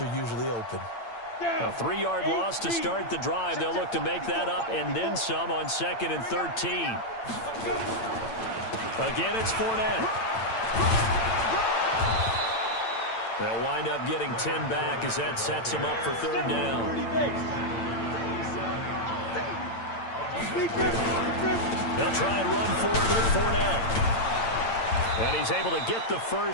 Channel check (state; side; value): late; right; 8.8 ms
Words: usually open. A 3-yard loss to start the drive. They'll look to make that up and then some on 2nd and 13. Again, it's Fournette. They'll wind up getting 10 back as that sets him up for 3rd down. They'll try and run forward with Fournette. And he's able to get the